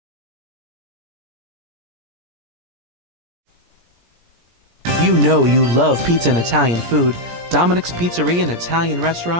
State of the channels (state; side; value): late; left; 17 ms